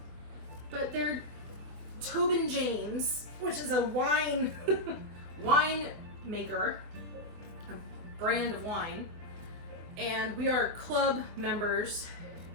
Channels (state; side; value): late; left; 24 ms